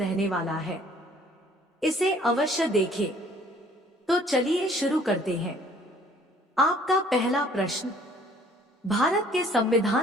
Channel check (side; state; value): both; normal; correlation 0.57